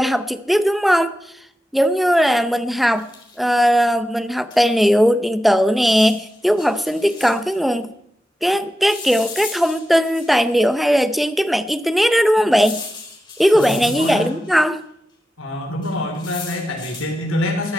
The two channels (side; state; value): both; normal; correlation 0.91